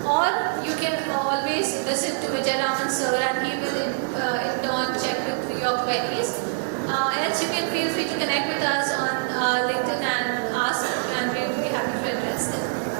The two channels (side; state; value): left; silent; digital silence